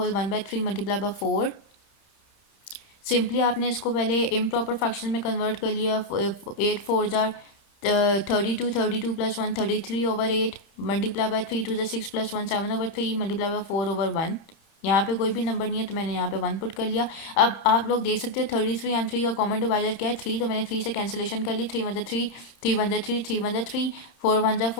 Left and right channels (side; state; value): right; late; 30 ms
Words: 1/3 multiply by 4. Simply आपने इसको पहले इम्प्रॉपर फ्रैक्शन में कन्वर्ट कर लिया. 8 4 jar 32 plus 1 33/8 multiply by 3 2 6 plus 1 7/3 multiply by 4/1. यहाँ पे कोई भी नंबर नहीं है तो मैंने यहाँ पे 1 पुट कर लिया. अब आप लोग देख सकते हो 33 एंड 3 का कॉमन डिवाइजर क्या है 3, तो मैंने 3 से कैंसिलेशन कर ली. 3 1 3 3 1 3 3 1 3 4 1